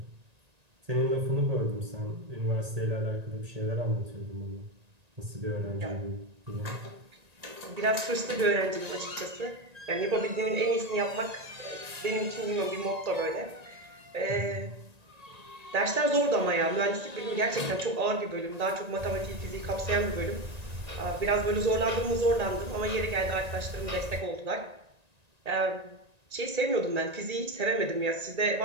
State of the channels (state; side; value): late; left; 1.8 ms